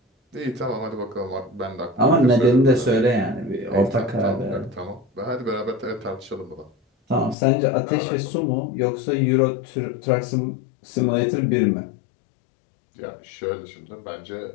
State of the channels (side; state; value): right; drops out; at 7.4 s